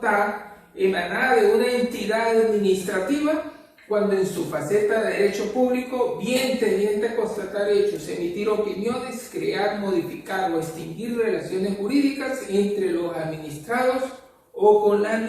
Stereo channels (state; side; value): identical; both; correlation 1.00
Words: emanada de una entidad administrativa cuando en su faceta de derecho público, bien tendiente a constatar hechos, emitir opiniones, crear, modificar o extinguir relaciones jurídicas entre los administrados o con la